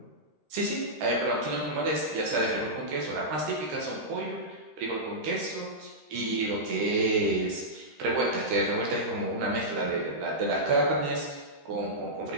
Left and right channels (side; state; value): left; late; 13 ms